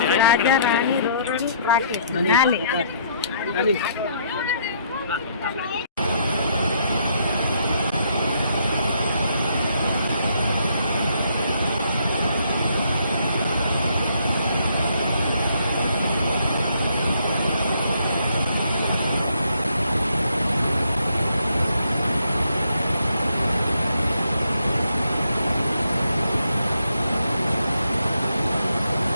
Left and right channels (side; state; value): both; inverted; correlation -0.70